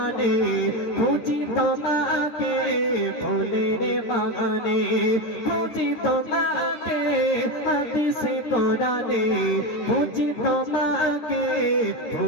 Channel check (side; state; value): right; late; 13 ms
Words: খুঁজি তোমাকে ফুলের বাগানে খুঁজি তোমাকে হাদিসে কোরআনে খুঁজি তোমাকে